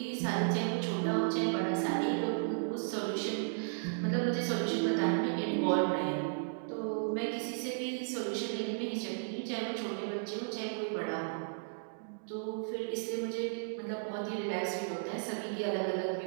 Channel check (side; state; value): left; silent; digital silence